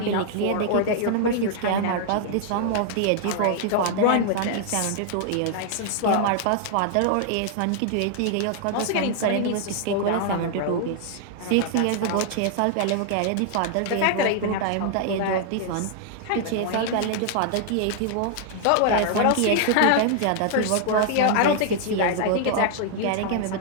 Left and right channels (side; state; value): both; different; correlation -0.01